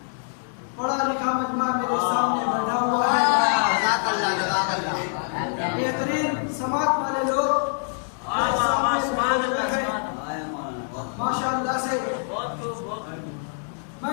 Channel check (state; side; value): silent; right; digital silence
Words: पढ़ा लिखा मजमा मेरे सामने बैठा हुआ है। बेहतरीन समाज वाले लोग माशाअल्लाह से